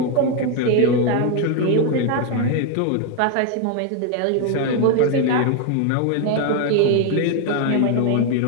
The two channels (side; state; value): both; different; correlation 0.01